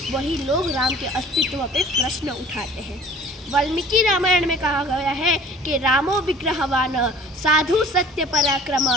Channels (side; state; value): both; normal; correlation 0.47